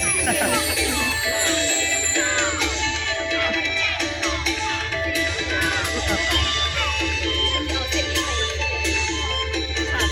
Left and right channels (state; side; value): identical; both; correlation 1.00